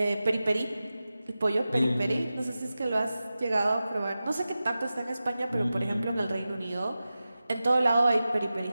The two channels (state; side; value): inverted; both; correlation -0.94